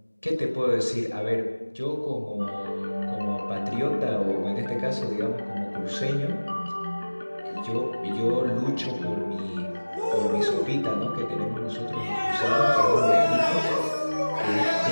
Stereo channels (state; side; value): inverted; both; correlation -1.00